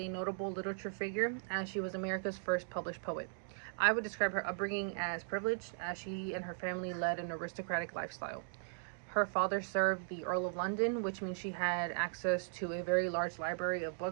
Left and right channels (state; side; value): silent; left; digital silence